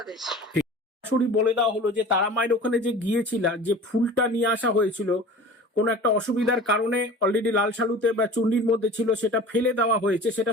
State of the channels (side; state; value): both; normal; correlation 0.40